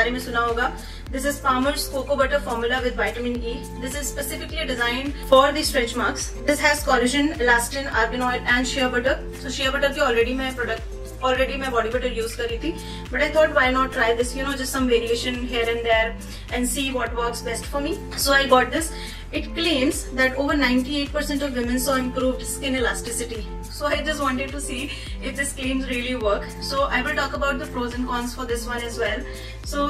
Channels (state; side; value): identical; both; correlation 1.00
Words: में सुना होगा. This is Palmer's Cocoa Butter Formula with Vitamin E. This is specifically designed for the stretch marks. This has collagen, elastin, argan oil and shea butter. So shea butter की already मैं body butter use कर रही थी, but I thought why not try this, just some variation here and there and see what works best for me. So I got this. It claims that over 98% of women saw improved skin elasticity. So I just wanted to see if this claims really work. So I will talk about the pros and cons for this one as well. So